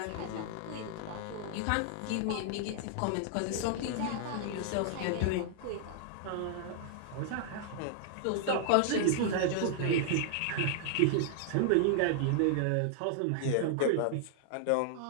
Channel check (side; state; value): both; different; correlation -0.01